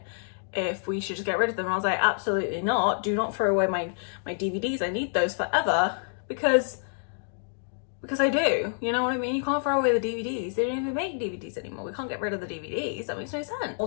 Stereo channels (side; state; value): right; silent; digital silence